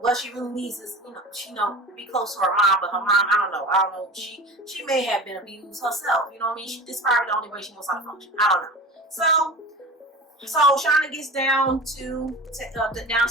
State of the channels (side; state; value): both; normal; correlation 0.33